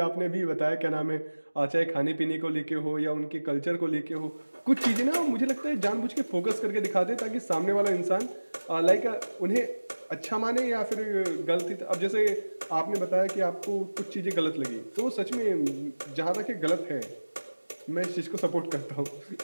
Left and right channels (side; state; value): both; inverted; correlation -1.00